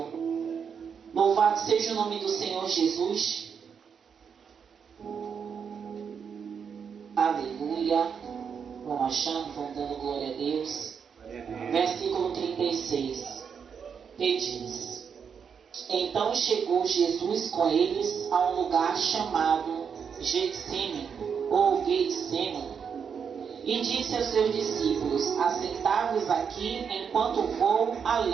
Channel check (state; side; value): quieter; left; 6.8 dB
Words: Louvado seja o nome do Senhor Jesus. Aleluia. Vão achando, vão dando glória a Deus. Glória a Deus. Versículo 36. Que diz: Então chegou Jesus com eles a um lugar chamado Getsêmani, ou Getsemane, e disse aos seus discípulos: Assentai-vos aqui enquanto vou